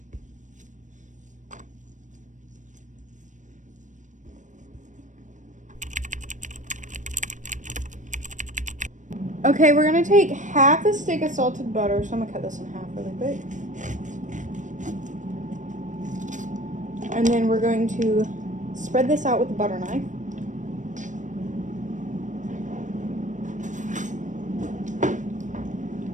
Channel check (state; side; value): late; left; 0.36 ms